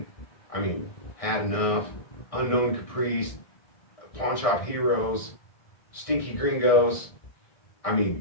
I mean, Had Enough, Unknown Caprice, Pawn Shop Heroes, Stinky Gringos. I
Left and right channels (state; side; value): late; right; 1.6 ms